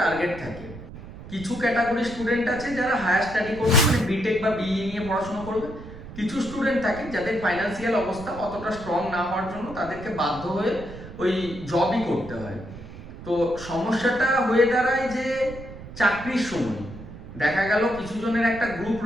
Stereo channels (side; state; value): right; noise; rumble, 14 dB below the sound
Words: থাকে। কিছু ক্যাটাগরি স্টুডেন্ট আছে যারা হায়ার স্টাডি করবে, মানে বিটেক বা বিই নিয়ে পড়াশোনা করবে। কিছু স্টুডেন্ট থাকে যাদের ফাইন্যান্সিয়াল অবস্থা অতটা স্ট্রং না হওয়ার জন্য তাদেরকে বাধ্য হয়ে ওই জবই করতে হয়। তো সমস্যাটা হয়ে দাঁড়ায় যে চাকরির সময় দেখা গেল কিছু জনের একটা গ্রুপ